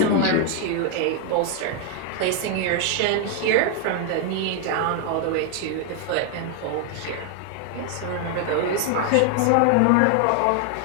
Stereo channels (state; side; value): different; both; correlation 0.00